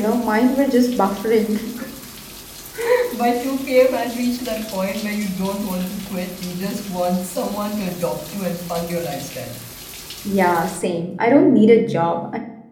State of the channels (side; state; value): both; identical; correlation 1.00